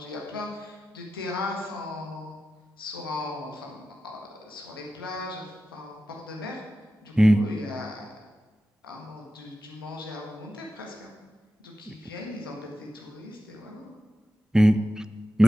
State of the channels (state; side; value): normal; both; correlation 0.92